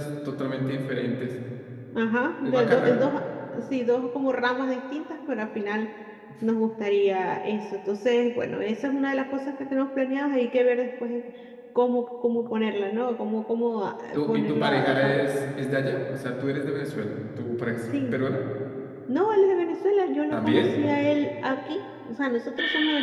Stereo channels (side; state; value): both; identical; correlation 1.00